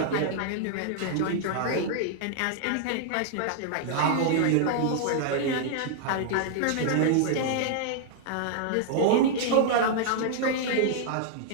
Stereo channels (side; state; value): both; different; correlation -0.01